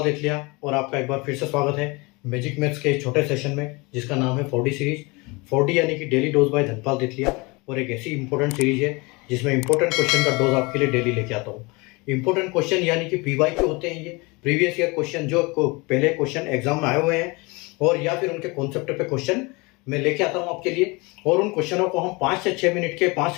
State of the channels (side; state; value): right; quieter; 26.1 dB